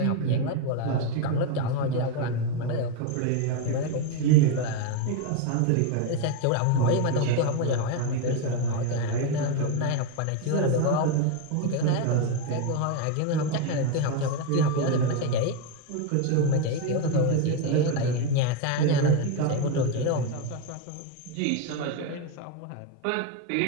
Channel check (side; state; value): both; different; correlation 0.02